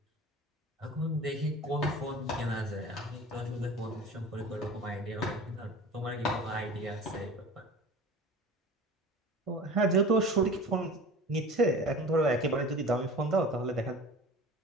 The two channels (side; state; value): both; normal; correlation 0.38